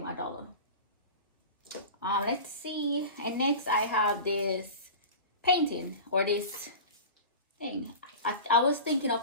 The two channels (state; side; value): inverted; both; correlation -0.33